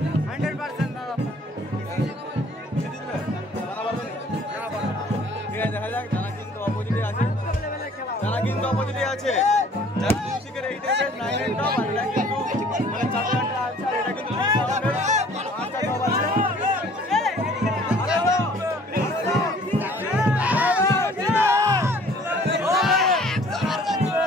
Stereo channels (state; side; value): normal; both; correlation 0.54